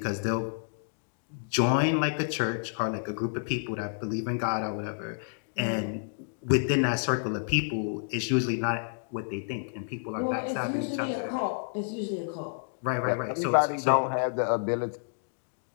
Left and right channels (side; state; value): right; silent; digital silence